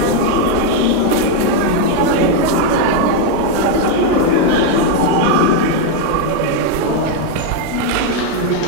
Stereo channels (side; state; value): both; different; correlation 0.01